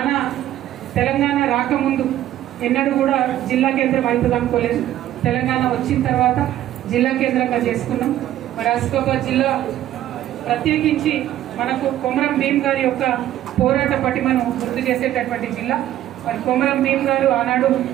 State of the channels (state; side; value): quieter; left; 12.8 dB